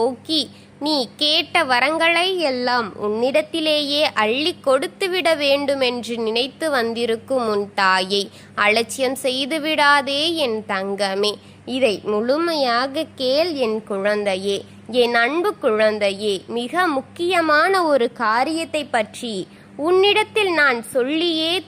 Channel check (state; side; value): identical; both; correlation 1.00